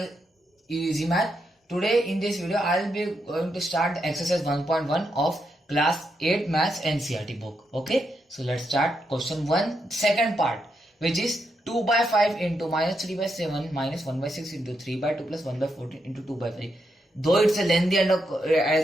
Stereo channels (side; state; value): both; normal; correlation 0.82